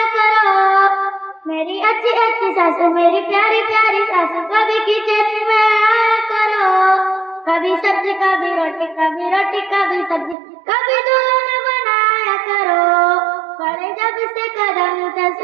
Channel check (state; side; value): drops out; left; at 10.4 s